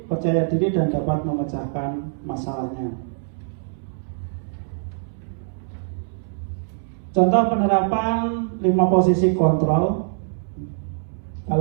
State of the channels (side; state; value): left; silent; 63 dB below the other